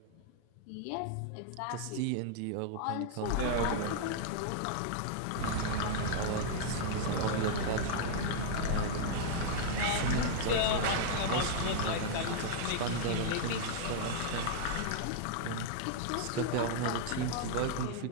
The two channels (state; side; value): different; both; correlation -0.01